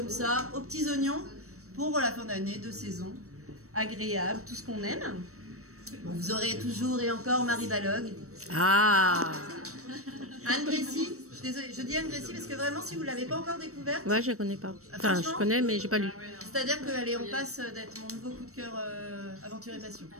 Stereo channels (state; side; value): late; left; 0.64 ms